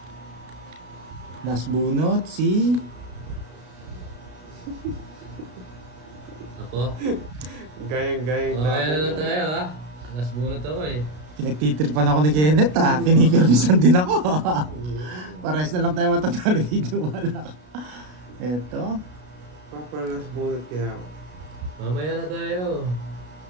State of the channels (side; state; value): left; late; 33 ms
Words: Last bunot, si... Ako. Gayang-gayang Kaya na lang tayo, ha? Last bunot ako eh. Pinagtitripan ako ni Kenneth Pinipirmisan din ako. Pares na lang tayo matatalo dito. Wala. Eto. Papalas bunot kaya ako. Mamaya na tayo.